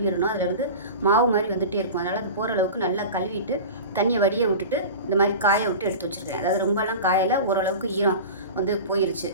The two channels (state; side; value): inverted; both; correlation -0.32